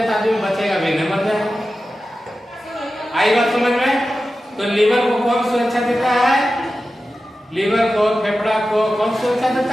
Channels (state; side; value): normal; both; correlation 0.93